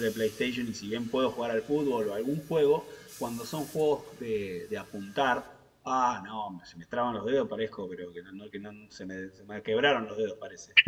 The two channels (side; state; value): both; identical; correlation 1.00